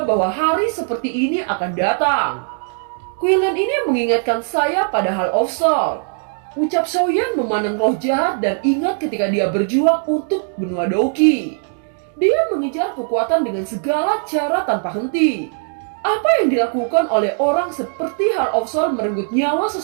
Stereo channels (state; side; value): silent; left; 66 dB below the other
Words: bahwa hari seperti ini akan datang. Quildan ini mengingatkan saya pada Hall of Soul. Ucap Xiaoyan memandang roh jahat dan ingat ketika dia berjuang untuk benua Douqi. Dia mengejar kekuatan dengan segala cara tanpa henti. Apa yang dilakukan oleh orang seperti Hall of Soul merenggut nyawa